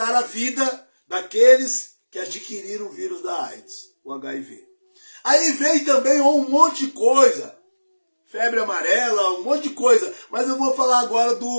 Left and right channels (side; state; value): both; inverted; correlation -1.00